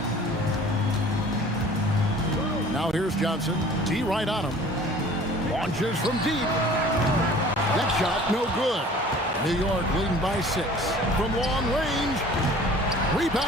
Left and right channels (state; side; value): normal; both; correlation 0.48